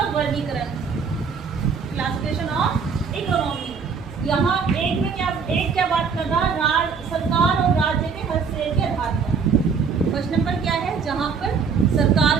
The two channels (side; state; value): left; quieter; 5.8 dB